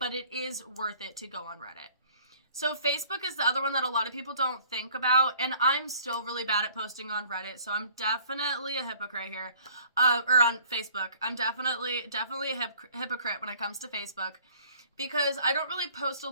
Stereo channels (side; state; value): both; inverted; correlation -0.55